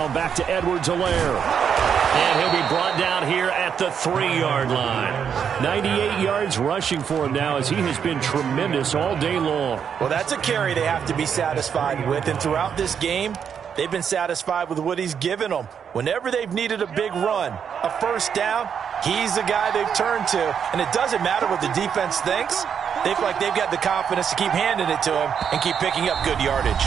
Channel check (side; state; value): left; quieter; 7.6 dB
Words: back to Edwards-Helaire. And he'll be brought down here at the 3-yard line. 98 yards rushing for him now as he has been tremendous all day long. Well, that's a carry they have to be satisfied with. And throughout this game, they've been satisfied with what he's given them. Whenever they've needed a big run, a first down, he's the guy they've turned to. And it doesn't matter what the defense thinks. They feel like they've got the confidence to keep handing it to him and keep picking up good yardage.